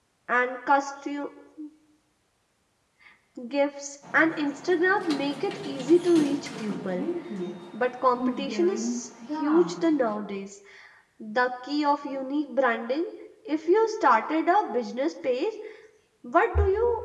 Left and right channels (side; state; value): both; identical; correlation 1.00